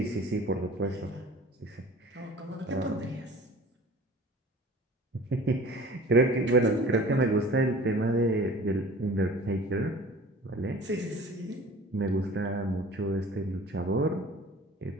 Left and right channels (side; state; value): both; normal; correlation 0.44